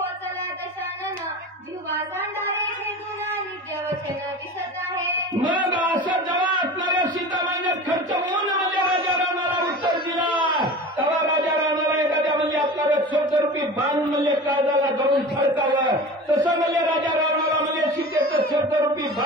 दशानन जिव्हा सांडारे हे गुन्हा नित्य वचन दिसत आहे. मग असं जेव्हा असणाऱ्या सीतामाईने खर्च होऊन म्हणजे राजा रावणाला उत्तर दिला तेव्हा राजा रावणाला एखाद्या म्हणजे आपल्याला शब्दरूपी बाण म्हणजे काळजाला धरून फडकावं तसं म्हणजे राजा रावणाला म्हणजे सीतेचं शब्दरूपी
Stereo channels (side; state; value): both; normal; correlation 0.34